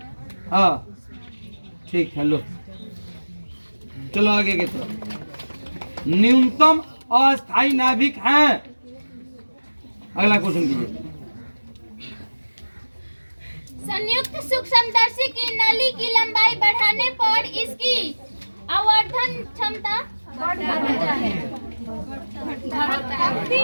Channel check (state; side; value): inverted; both; correlation -1.00